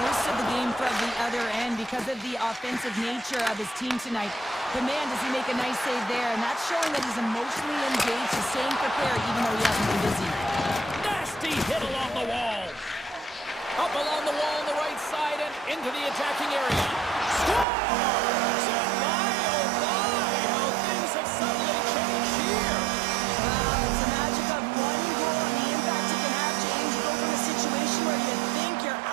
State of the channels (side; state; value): left; drops out; at 17.7 s